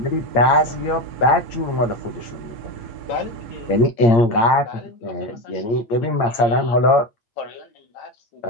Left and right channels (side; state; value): right; late; 8.7 ms